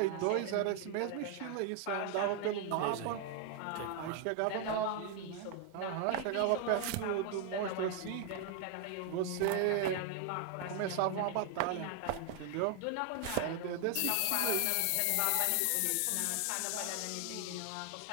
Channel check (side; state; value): both; different; correlation 0.00